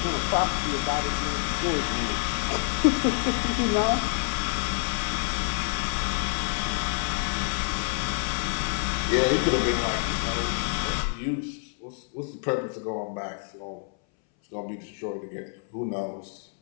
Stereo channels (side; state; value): right; silent; 60 dB below the other